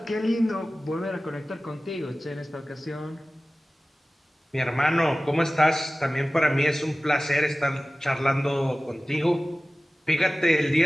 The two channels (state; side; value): normal; both; correlation 0.97